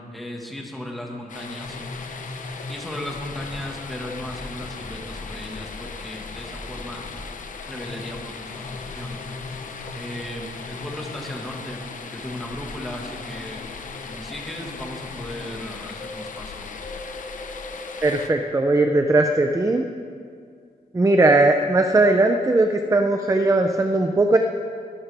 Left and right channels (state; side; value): normal; both; correlation 0.73